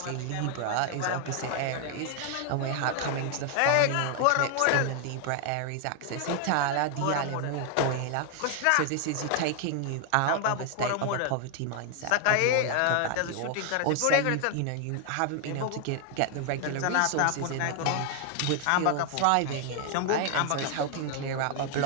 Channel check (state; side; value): different; both; correlation 0.00